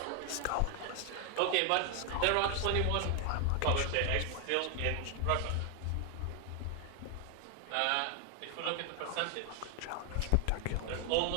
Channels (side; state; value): both; different; correlation 0.00